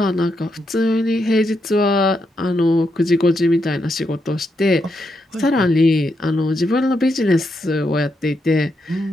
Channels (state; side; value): normal; both; correlation 0.82